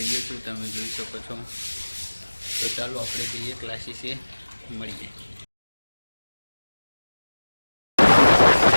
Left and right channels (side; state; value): both; inverted; correlation -1.00